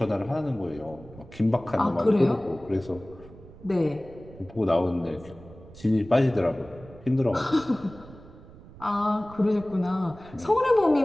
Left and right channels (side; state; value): right; noise; rumble, 19 dB below the sound